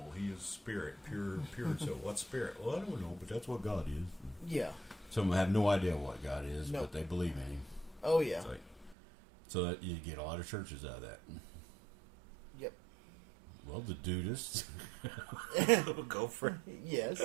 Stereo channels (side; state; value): left; drops out; at 9.0 s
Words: He is spirit, pure. So what's spirit? Well, I don't know, but that's what God is. Yeah. Some have no idea what God is, but they believe in Him. Oh yeah. So that you get a lot of churches out of that. Yep. Well, the Dudists. Go for it. Yes,